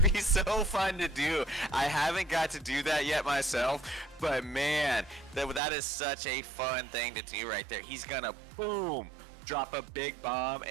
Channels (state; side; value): drops out; left; at 5.6 s